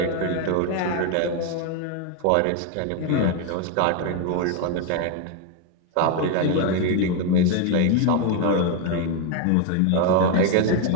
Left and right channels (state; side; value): different; both; correlation 0.01